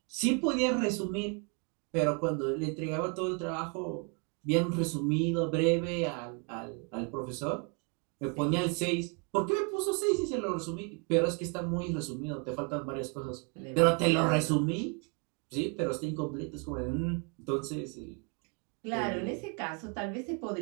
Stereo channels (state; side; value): quieter; left; 34.7 dB